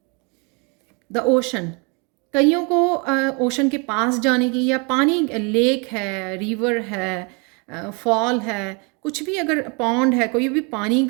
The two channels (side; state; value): left; quieter; 32.6 dB